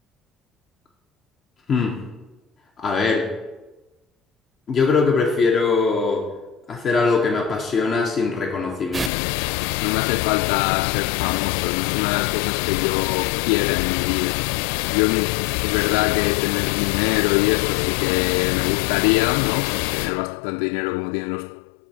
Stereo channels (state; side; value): drops out; right; at 9.1 s